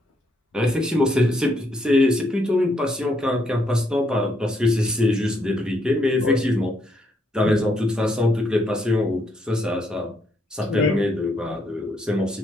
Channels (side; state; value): both; normal; correlation 0.74